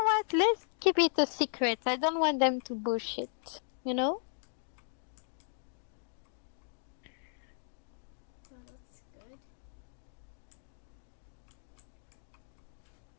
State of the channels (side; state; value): right; silent; digital silence